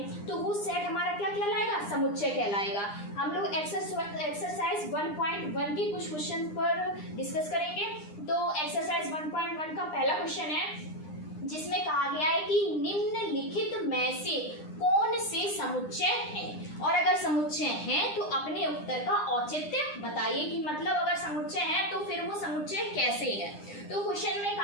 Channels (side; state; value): right; late; 9.8 ms